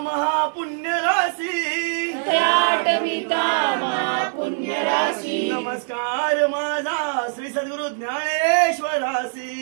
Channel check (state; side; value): silent; left; digital silence